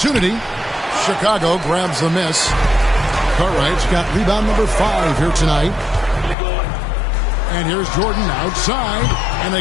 Chicago grabs the miss. Cartwright's got rebound number 5 here tonight. And here's Jordan outside. And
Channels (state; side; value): drops out; right; at 6.4 s